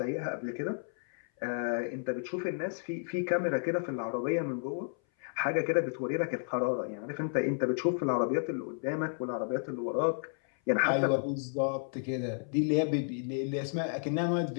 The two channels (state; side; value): silent; right; 56 dB below the other